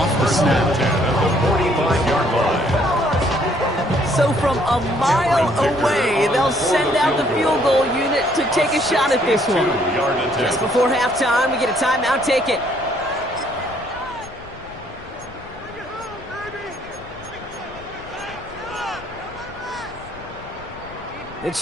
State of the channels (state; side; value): noise; left; rumble, 19 dB below the sound